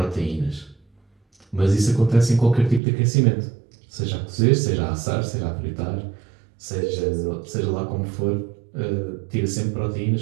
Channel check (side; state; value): left; drops out; at 2.8 s